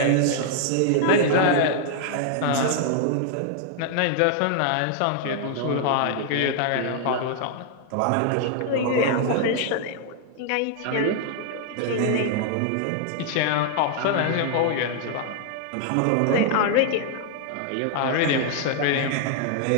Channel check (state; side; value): different; both; correlation 0.00